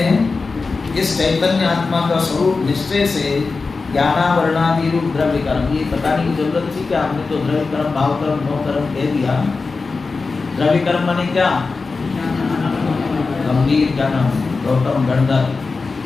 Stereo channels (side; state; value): right; quieter; 4.2 dB